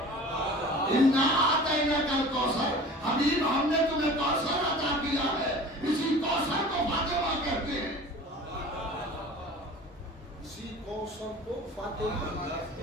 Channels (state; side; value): normal; both; correlation 0.41